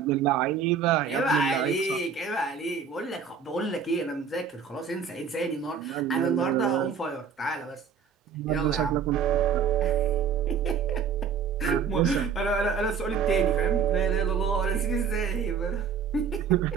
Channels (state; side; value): quieter; left; 6.6 dB